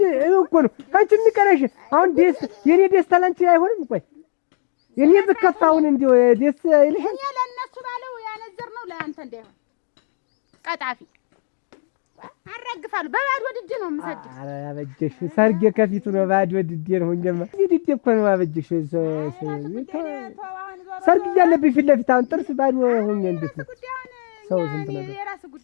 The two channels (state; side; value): silent; right; 58 dB below the other